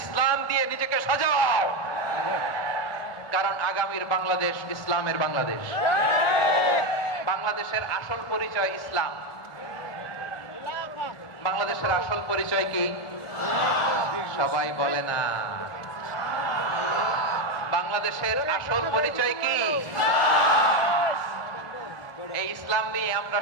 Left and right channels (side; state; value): right; late; 1.4 ms